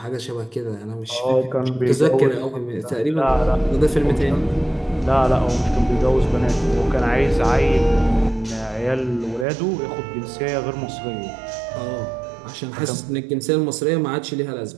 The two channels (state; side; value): drops out; left; at 9.5 s